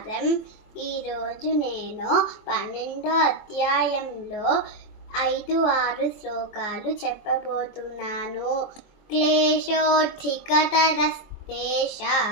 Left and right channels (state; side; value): late; right; 24 ms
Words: ఈరోజు నేను 12వ అధ్యాయంలో 5-6 శ్లోకాలు చెప్పబోతున్నాను.